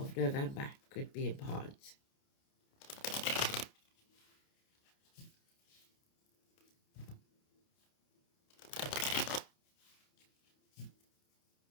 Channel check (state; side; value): late; right; 29 ms